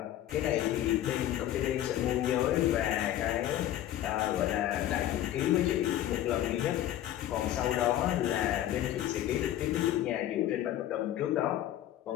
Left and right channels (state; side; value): quieter; right; 12.6 dB